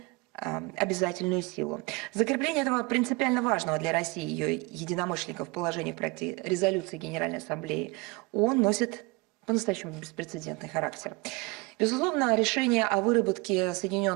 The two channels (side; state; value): left; quieter; 25.7 dB